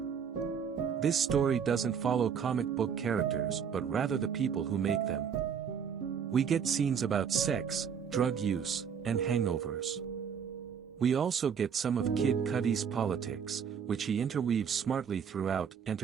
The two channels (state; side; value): quieter; left; 7.2 dB